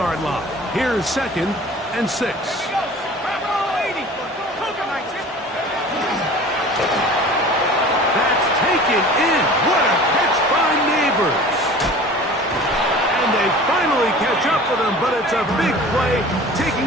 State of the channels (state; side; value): normal; both; correlation 0.42